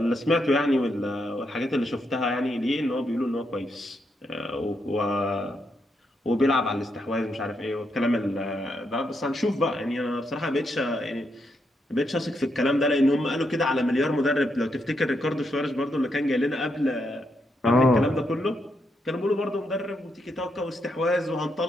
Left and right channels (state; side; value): normal; both; correlation 0.80